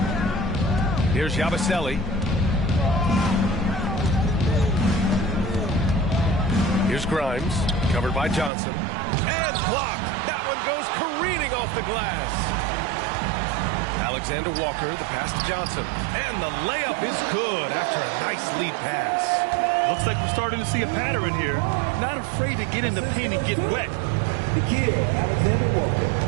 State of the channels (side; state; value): left; drops out; at 8.5 s